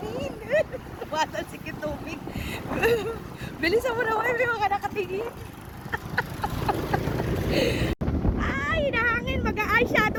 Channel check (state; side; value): identical; both; correlation 1.00